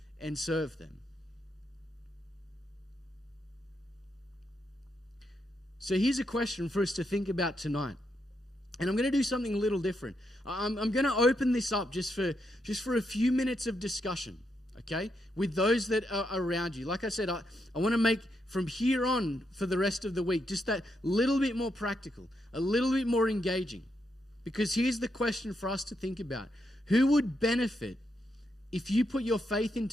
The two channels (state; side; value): normal; both; correlation 0.81